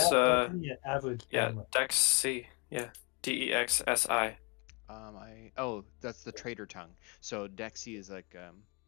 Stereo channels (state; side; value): quieter; right; 29.6 dB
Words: the average yeah, gamer. Dexi. Yeah, DEXSI. That's the trader tongue. So Dexy is like